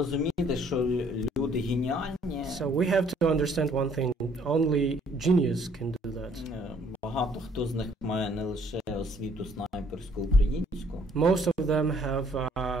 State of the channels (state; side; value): normal; both; correlation 0.62